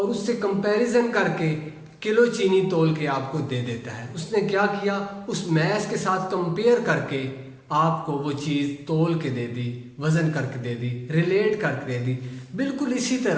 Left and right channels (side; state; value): both; identical; correlation 1.00